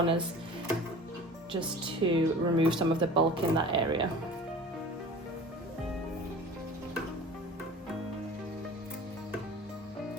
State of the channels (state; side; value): normal; both; correlation 0.40